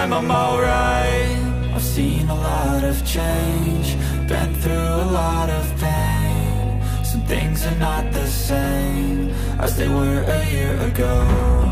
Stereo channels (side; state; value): both; identical; correlation 1.00